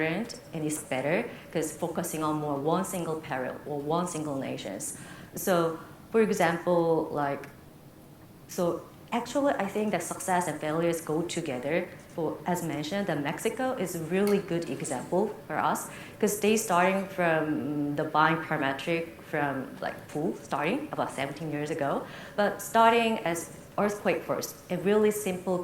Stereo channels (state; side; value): identical; both; correlation 1.00